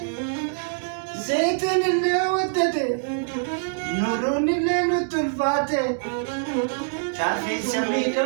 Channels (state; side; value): silent; left; digital silence